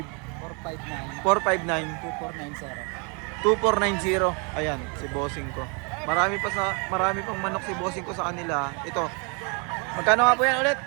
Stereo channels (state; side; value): quieter; left; 34.6 dB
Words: 459 459 2490. 2490. Ayan, si bossing ko. Marami pang manok si bossing ko sa kanila. Ito. Magkano nga po yan ulit?